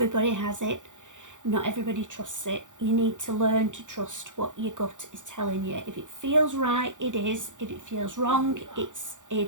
has it. Not everybody trusts it. You need to learn to trust what your gut is telling you. If it feels right, it is. If it feels wrong, it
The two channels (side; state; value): left; late; 0.86 ms